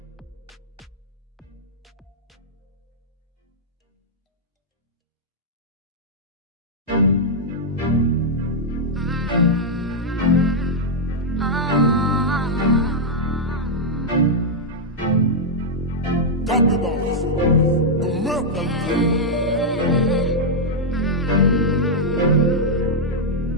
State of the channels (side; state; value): both; normal; correlation -0.04